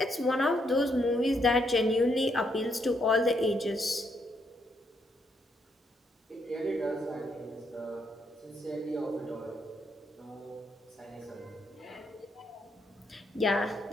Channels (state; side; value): normal; both; correlation 0.76